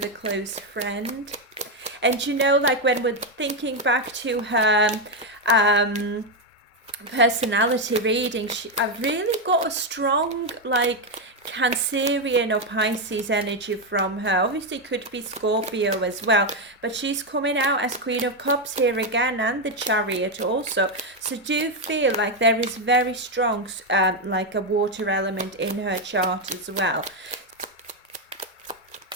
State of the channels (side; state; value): both; normal; correlation 0.04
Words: a close friend. And you know, like when we're thinking back to her personality reading, I've really got a strong like Cancerian or Pisces energy from her. Obviously could be Scorpio as well, but she's coming out as Queen of Cups here again, and the Chariot also. So do feel like there is very strong like a water element in her chart as well.